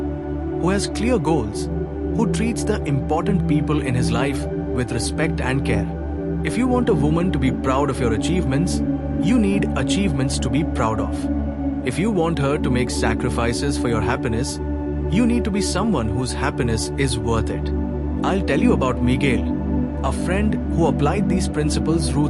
has clear goals, who treats the important people in his life with respect and care. If you want a woman to be proud of your achievements, you need achievements to be proud of. If you want her to make sacrifices for your happiness, you need to be someone whose happiness is worth it. I'll tell you about Miguel, a friend who applied these principles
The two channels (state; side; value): identical; both; correlation 1.00